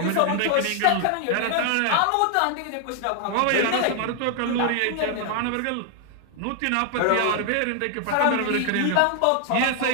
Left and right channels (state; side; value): different; both; correlation 0.00